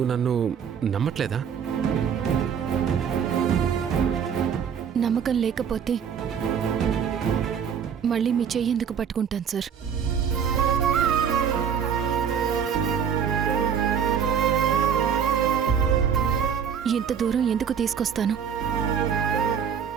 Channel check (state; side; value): quieter; left; 7.5 dB